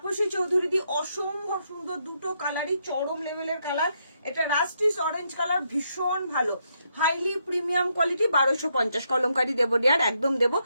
চৌধুরী দি অসম্ভব সুন্দর, দুটো কালারই চরম লেভেলের কালার, এটা রাস্টিস অরেঞ্জ কালার, ভীষণ ভালো, হাইলি প্রিমিয়াম কোয়ালিটি, 1250 কলমকারি দেবো ডিয়ার, একদম দেবো।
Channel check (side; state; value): both; inverted; correlation -0.78